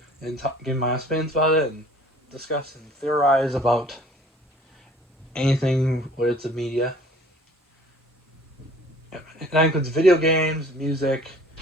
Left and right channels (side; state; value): both; normal; correlation 0.52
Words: and give my opinions about it and discuss and theorize about anything related to media. That includes video games, music,